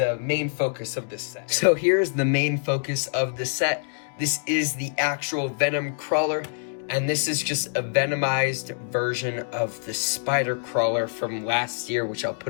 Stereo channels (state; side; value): silent; right; digital silence